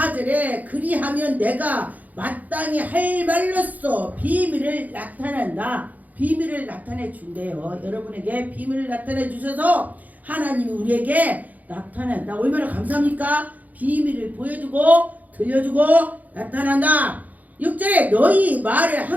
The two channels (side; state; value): left; late; 0.079 ms